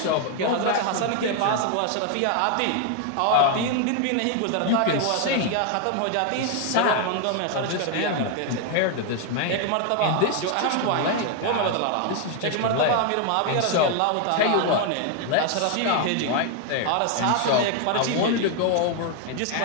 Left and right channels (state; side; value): different; both; correlation 0.01